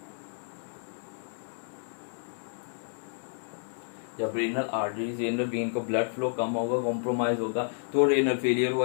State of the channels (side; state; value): right; silent; 57 dB below the other